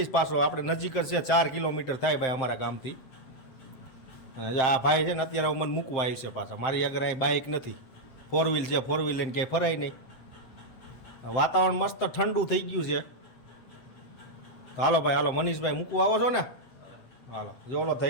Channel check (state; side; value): late; right; 7.7 ms